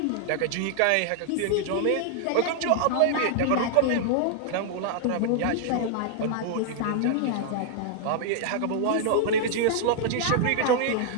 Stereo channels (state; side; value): different; both; correlation 0.00